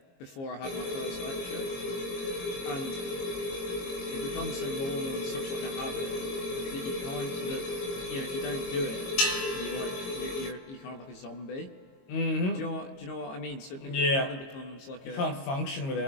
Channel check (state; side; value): late; right; 22 ms